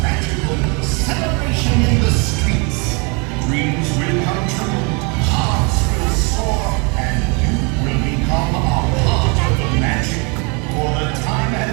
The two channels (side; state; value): left; quieter; 32.4 dB